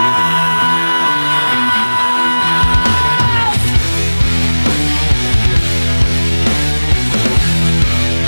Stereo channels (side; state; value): both; inverted; correlation -1.00